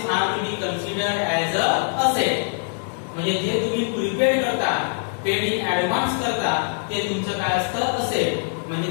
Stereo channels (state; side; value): silent; right; digital silence